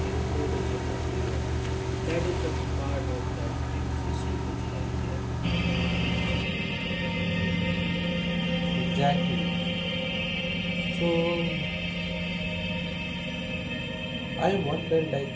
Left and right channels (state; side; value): identical; both; correlation 1.00